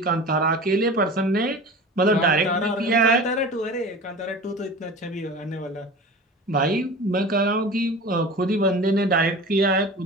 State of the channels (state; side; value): normal; both; correlation 0.36